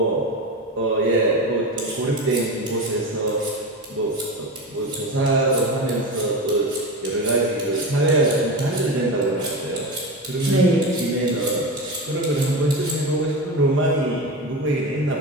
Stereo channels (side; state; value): both; normal; correlation 0.23